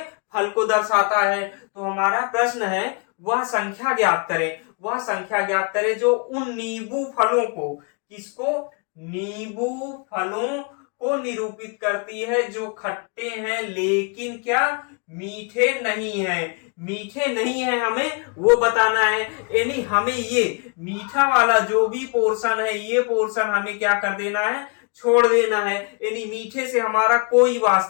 फल को दर्शाता है। तो हमारा प्रश्न है वह संख्या ज्ञात करें, वह संख्या ज्ञात करें जो उन नींबू फलों को, किसको, नींबू फलों को निरूपित करती है जो खट्टे हैं लेकिन क्या, मीठे नहीं है, मीठे नहीं है, हमें वो बताना है। यानी हमें ये मीठा वाला जो भी पोर्शन है ये पोर्शन हमें क्या कर देना है, छोड़ देना है, यानी मीठे से हमारा कोई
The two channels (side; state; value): right; quieter; 34.9 dB